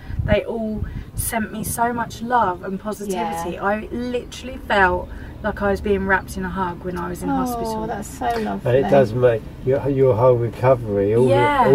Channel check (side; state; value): both; identical; correlation 1.00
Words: they all sent me so much love and positivity. I literally felt like I was being wrapped in a hug when I was in hospital. Oh, that's so lovely. And it does make your whole recovery,